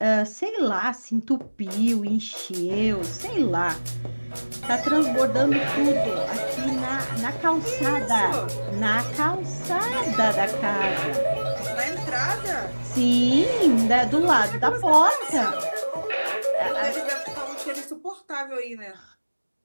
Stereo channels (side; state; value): both; inverted; correlation -1.00